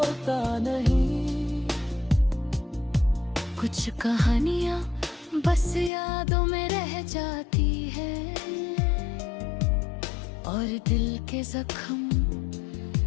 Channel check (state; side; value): drops out; right; at 5.9 s